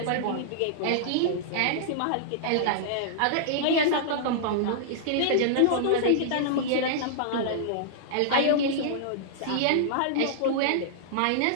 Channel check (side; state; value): both; different; correlation -0.02